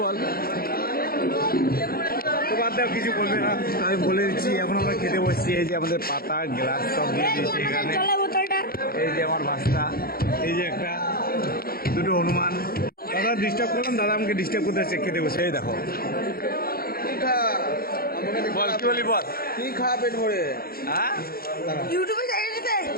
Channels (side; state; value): right; late; 0.44 ms